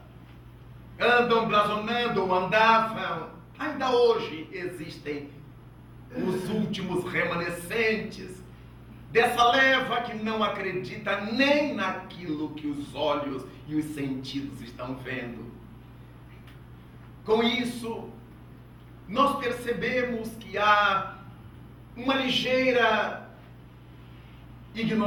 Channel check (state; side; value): identical; both; correlation 1.00